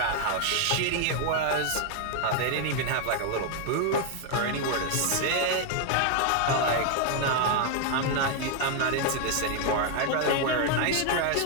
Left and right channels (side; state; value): both; different; correlation 0.00